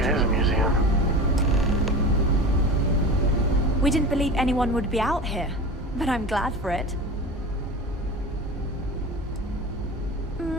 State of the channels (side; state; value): both; normal; correlation 0.32